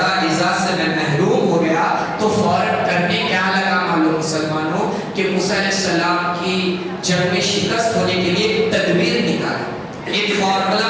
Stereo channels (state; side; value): identical; both; correlation 1.00